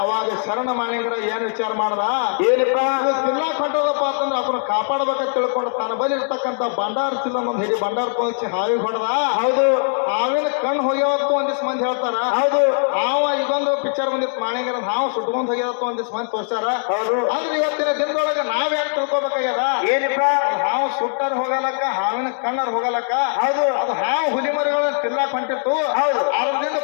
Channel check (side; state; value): right; silent; digital silence